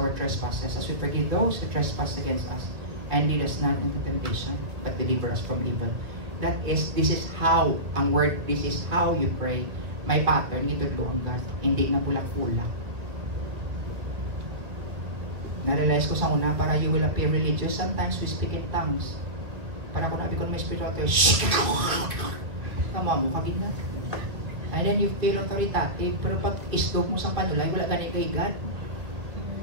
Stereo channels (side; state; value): left; late; 1.9 ms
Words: trespasses, as we forgive those who trespass against us. And lead us not into temptation, but deliver us from evil. This is how, ang word, this is how you pray. May pattern, ito doon God. Hindi na bulak-bulak. Na-realize ko sa una, para you will appear religious, sometimes we speak in tongues. Para kung nabi ko na may spiritual tayo, tama mo, kagin na. And then you feel authoritative, pero pag islog mo sa panulay, wala ganit kay God.